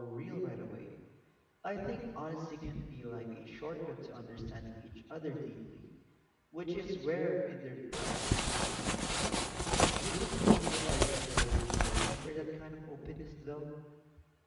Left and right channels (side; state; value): both; identical; correlation 1.00